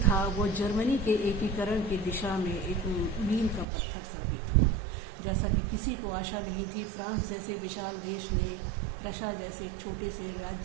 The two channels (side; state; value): left; drops out; at 3.7 s